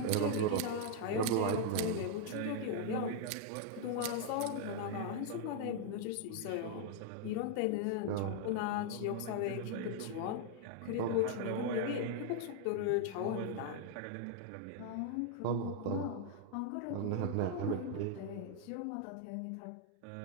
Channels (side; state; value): both; different; correlation 0.00